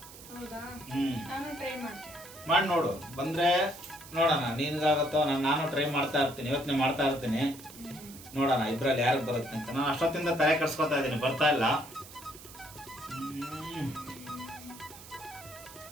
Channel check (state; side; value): noise; right; hiss, 17 dB below the sound